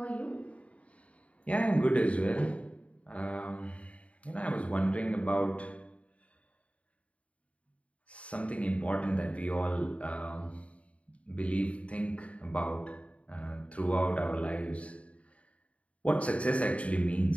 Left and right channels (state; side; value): late; right; 0.064 ms